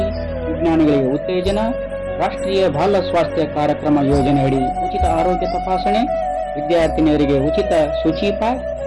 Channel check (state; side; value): identical; both; correlation 1.00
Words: ವಿಜ್ಞಾನಿಗಳಿಗೆ ಉತ್ತೇಜನ, ರಾಷ್ಟ್ರೀಯ ಬಾಲ ಸ್ವಾಸ್ಥ್ಯ ಕಾರ್ಯಕ್ರಮ ಯೋಜನೆಯಡಿ ಉಚಿತ ಆರೋಗ್ಯ ತಪಾಸಣೆ, ವಿದ್ಯಾರ್ಥಿನಿಯರಿಗೆ ಉಚಿತ ಶುಚಿ ಪ್ಯಾಡ್,